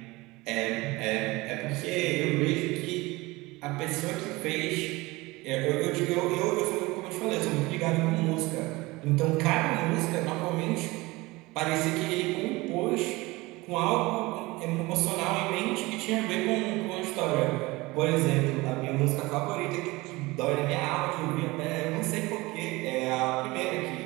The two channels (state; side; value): quieter; left; 21.9 dB